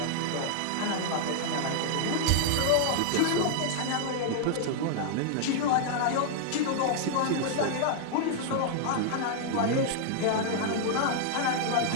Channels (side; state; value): both; different; correlation -0.01